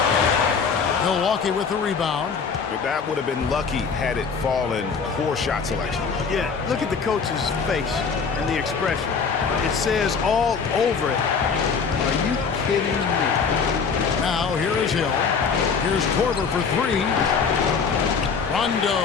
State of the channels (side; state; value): right; quieter; 5.6 dB